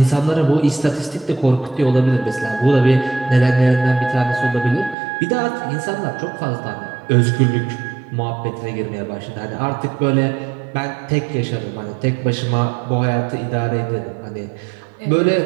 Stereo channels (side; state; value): left; drops out; at 5.0 s